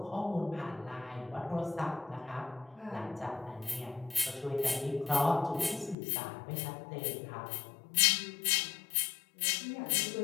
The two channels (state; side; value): drops out; right; at 6.0 s